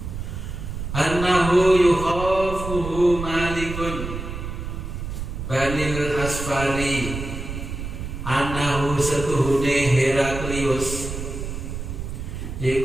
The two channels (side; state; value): right; noise; rumble, 7 dB below the sound